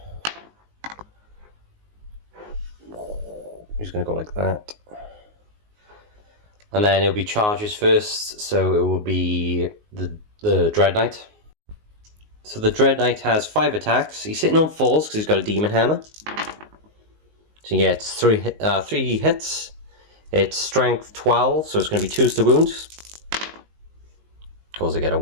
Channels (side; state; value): left; late; 19 ms